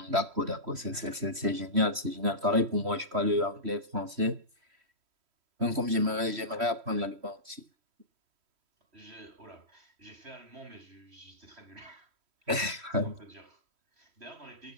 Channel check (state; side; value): late; left; 3.1 ms